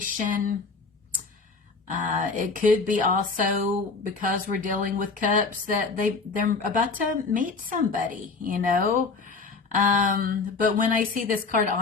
It could be also because we're dealing with cups that they're about to meet somebody, you know. But when I see this card,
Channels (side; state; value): right; quieter; 4.3 dB